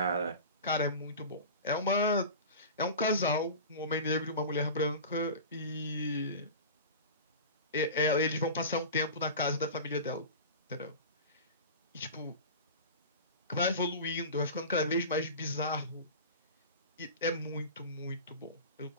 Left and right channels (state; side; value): inverted; both; correlation -0.32